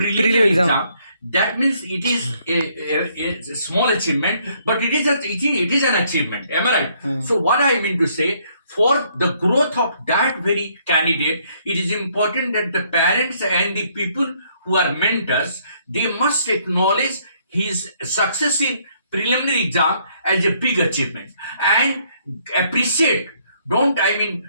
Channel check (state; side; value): inverted; both; correlation -0.68